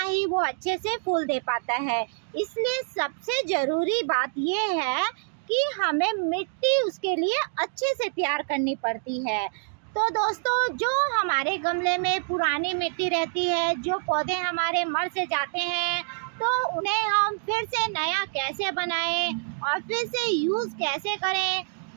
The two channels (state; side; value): silent; left; digital silence